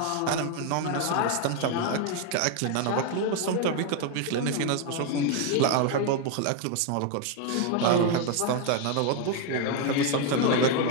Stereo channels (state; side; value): different; both; correlation 0.01